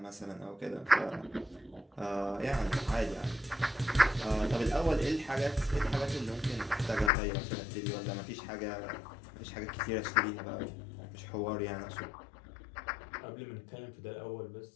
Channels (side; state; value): right; drops out; at 7.1 s